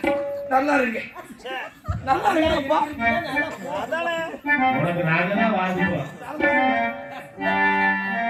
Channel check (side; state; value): both; identical; correlation 1.00